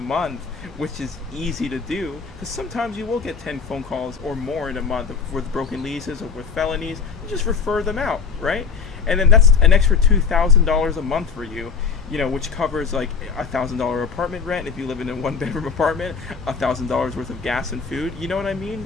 which is easy to do, because sometimes you will get 10 phone calls or more in a month with broken leases or with felonies. You just refer them out, right? And then that's an extra $2,000 a month for you, which covers like $1,000 apartment rent if you live in a 1-bedroom apartment, $1,000 worth of gas and food. You know what I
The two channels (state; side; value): quieter; right; 5.8 dB